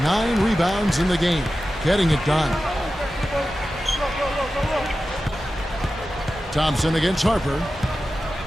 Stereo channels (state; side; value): normal; both; correlation 0.93